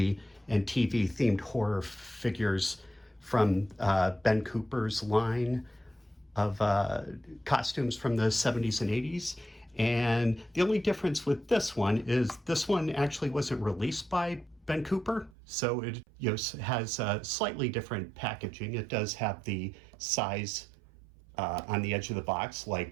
and TV themed horror figures from Ben Cooper's line of costumes from the 70s and 80s. And the only difference with this one is this one actually wasn't released by Ben Cooper, so it has slightly different packaging. It does have the size on the edge of the box,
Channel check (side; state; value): left; drops out; at 15.3 s